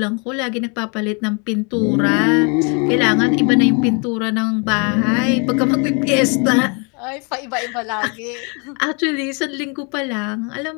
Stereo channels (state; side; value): quieter; right; 34.2 dB